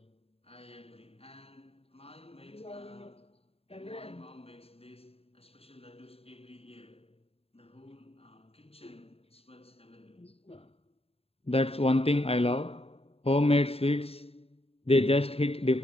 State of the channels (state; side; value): late; right; 0.28 ms